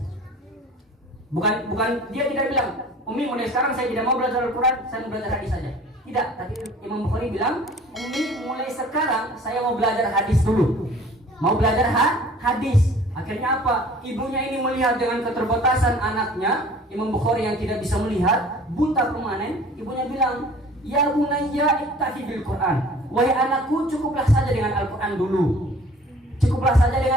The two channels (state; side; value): normal; both; correlation 0.48